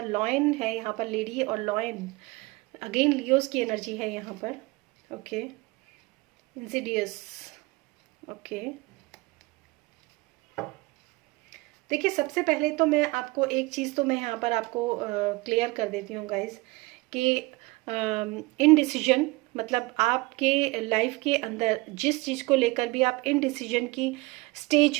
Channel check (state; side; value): quieter; left; 23.3 dB